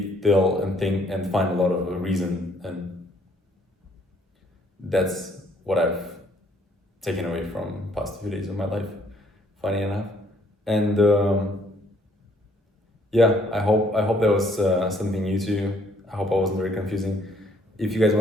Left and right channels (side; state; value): both; normal; correlation 0.64